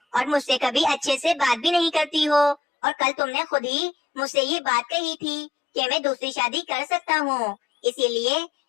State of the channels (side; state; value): right; drops out; at 2.6 s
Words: और मुझसे कभी अच्छे से बात भी नहीं करती हो, और कल तुमने खुद ही मुझसे ये बात कही थी कि मैं दूसरी शादी कर सकता हूँ, इसीलिए